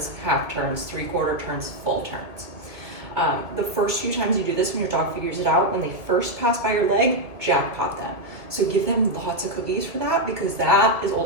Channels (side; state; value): left; late; 2.1 ms